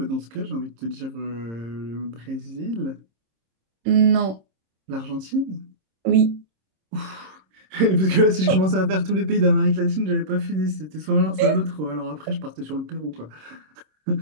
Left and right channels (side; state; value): left; late; 26 ms